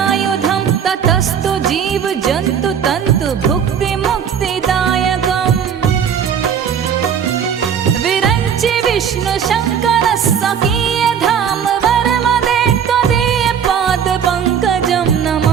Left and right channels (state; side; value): quieter; left; 7.9 dB